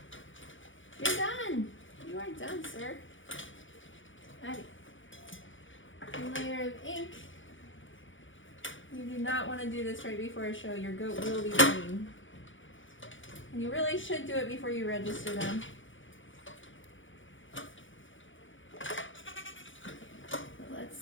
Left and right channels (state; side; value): late; right; 0.56 ms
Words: You're done. You are done, sir. Alright. A layer of ink. You do not want to do this right before a show. Your goat will be green. And you really should do it before you register them. Let's